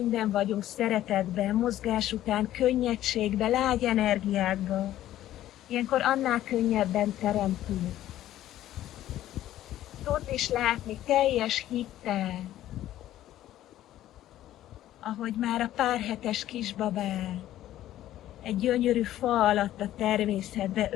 vagyunk, szeretetben, mozgás után, könnyedségben, lágy energiákban, ilyenkor annál könnyebben teremtünk. Tudd is látni teljes hittel, ahogy már a pár hetes kisbabát egy gyönyörű fa alatt a természetbe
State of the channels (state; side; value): quieter; right; 13.3 dB